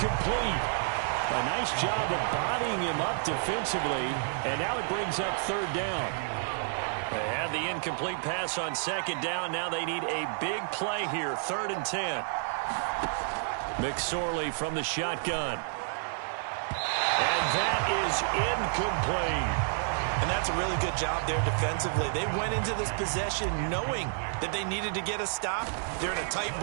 A nice job of bodying him up defensively, and now it brings up 3rd down. They had the incomplete pass on 2nd down. Now they need a big play here, 3rd and 10. McSorley from the shotgun. And that is incomplete. And that's a really good job there defensively. They went into this possession knowing that they needed to get a stop. They're in a tight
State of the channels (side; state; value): left; silent; 58 dB below the other